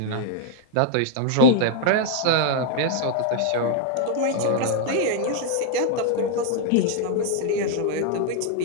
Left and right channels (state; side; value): different; both; correlation 0.00